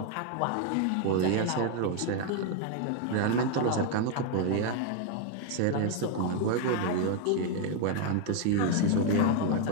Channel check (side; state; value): both; different; correlation 0.01